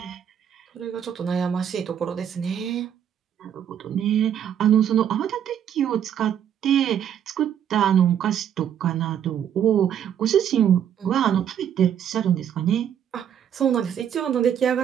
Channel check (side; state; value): left; quieter; 9.3 dB